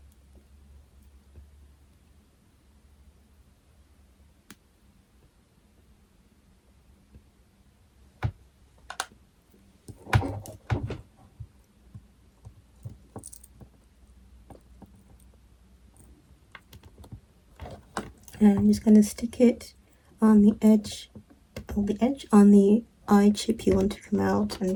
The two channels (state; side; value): identical; both; correlation 1.00